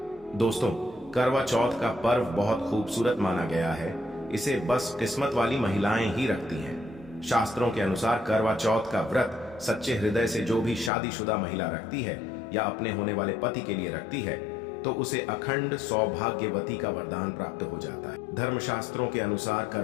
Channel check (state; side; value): drops out; right; at 10.9 s